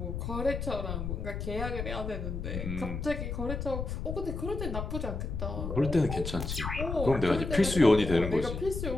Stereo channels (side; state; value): left; noise; rumble, 4 dB below the sound